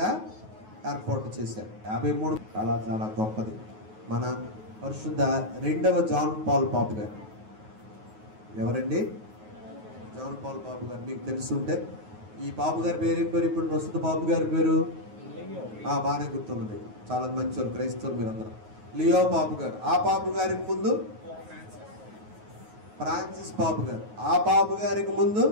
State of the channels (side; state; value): left; late; 9.4 ms